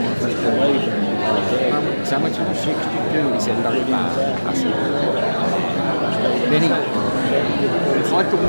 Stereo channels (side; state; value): both; inverted; correlation -1.00